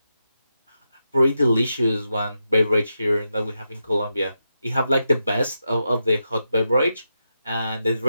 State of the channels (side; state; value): both; inverted; correlation -0.87